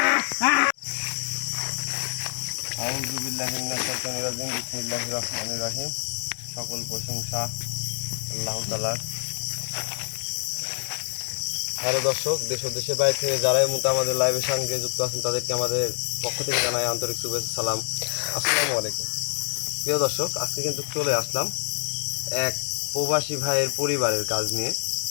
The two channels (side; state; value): right; silent; 61 dB below the other